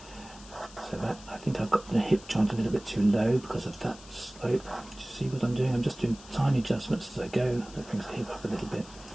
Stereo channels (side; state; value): left; noise; hiss, 19 dB below the sound